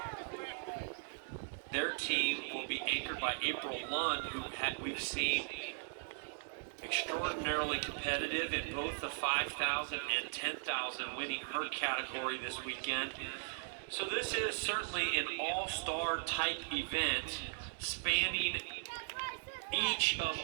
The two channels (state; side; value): silent; left; digital silence